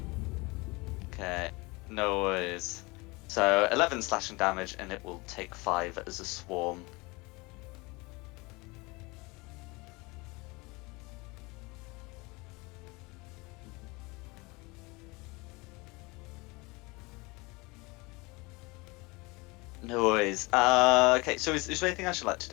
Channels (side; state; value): right; quieter; 25.1 dB